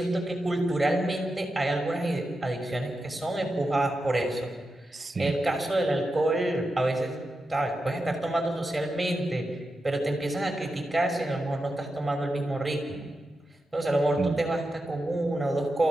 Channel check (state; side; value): normal; both; correlation 0.89